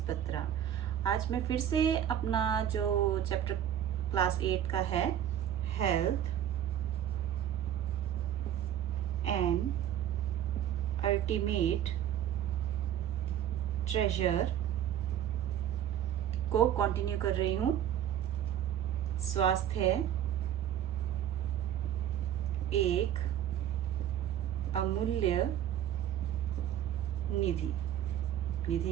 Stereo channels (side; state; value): left; quieter; 10.5 dB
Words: Batra. आज मैं फिर से अपना जो चैप्टर क्लास 8 का है हेल्थ एंड अल्टीमेट ट्रेजर को कंटिन्यू कर रही हूँ। स्वास्थ्य एक अमूल्य निधि।